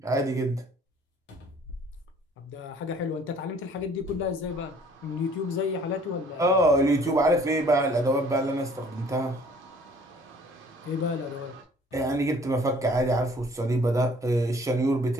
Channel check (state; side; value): normal; both; correlation 0.56